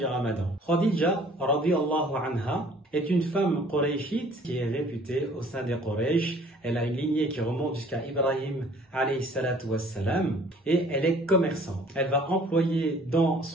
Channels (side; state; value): both; normal; correlation 0.54